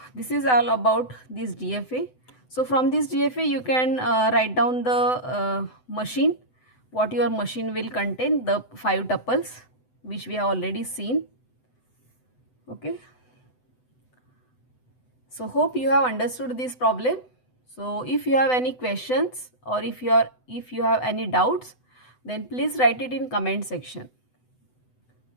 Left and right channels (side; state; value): right; late; 7.9 ms